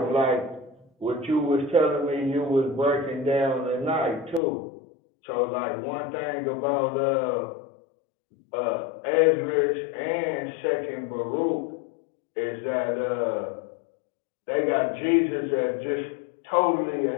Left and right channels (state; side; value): drops out; right; at 4.4 s